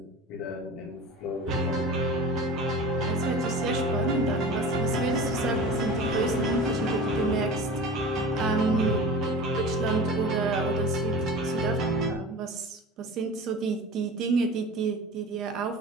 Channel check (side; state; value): both; normal; correlation 0.36